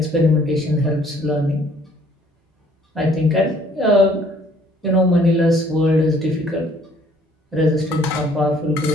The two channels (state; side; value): normal; both; correlation 0.60